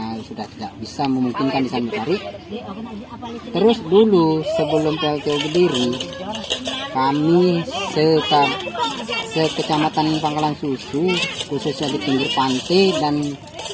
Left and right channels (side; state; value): both; identical; correlation 1.00